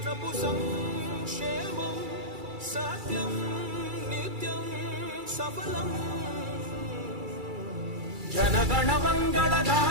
సంక్షేమం సత్యం నిత్యం సఫలం. జనగణ మంగళ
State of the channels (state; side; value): late; left; 2.3 ms